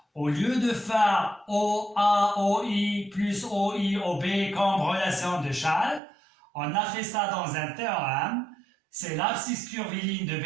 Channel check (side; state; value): left; drops out; at 6.0 s